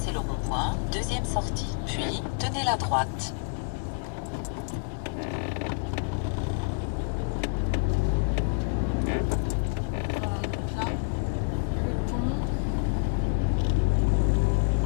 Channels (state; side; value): silent; right; digital silence